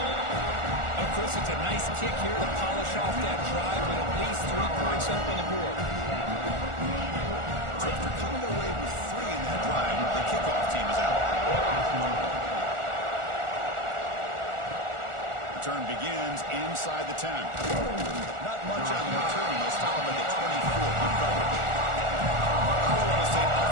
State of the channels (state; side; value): late; left; 1.4 ms